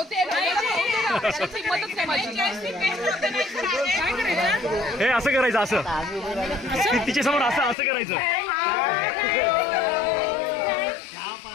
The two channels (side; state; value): right; drops out; at 7.8 s